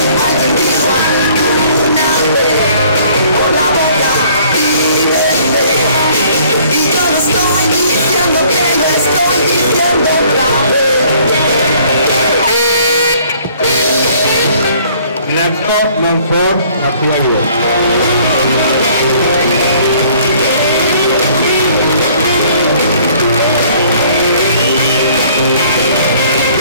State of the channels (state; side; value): inverted; both; correlation -0.58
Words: Narco Monfort García Guido.